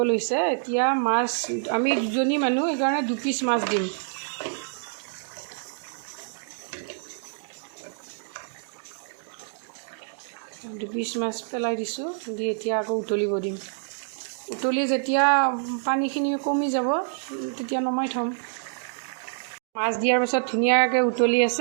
লৈছে। এতিয়া মাছ আমি দুজনী মানুহ, সেইকাৰণে 2 পিচ মাছ দিম। দুপিচ মাছ পেলাই দিছোঁ। দি এতিয়া আকৌ উতলিব দিম। উতলি যেতিয়া পানীখিনি কমি যাব তেতিয়া নমাই থ'ম। মাছ দিয়াৰ পাছত ধুনীয়াকৈ উতলি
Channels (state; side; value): silent; left; digital silence